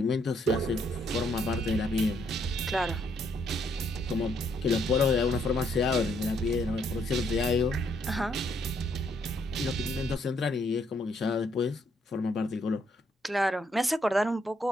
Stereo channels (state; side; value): normal; both; correlation 0.71